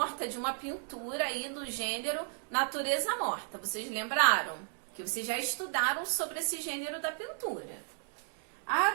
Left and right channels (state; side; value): silent; left; 55 dB below the other